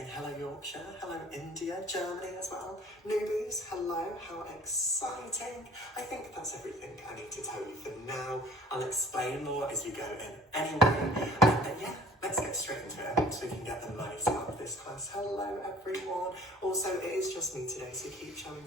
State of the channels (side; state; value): both; normal; correlation 0.50